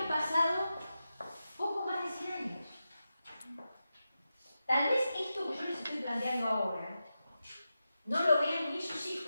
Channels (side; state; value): both; inverted; correlation -0.91